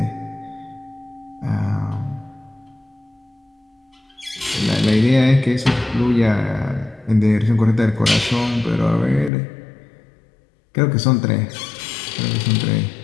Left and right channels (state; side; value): drops out; right; at 9.3 s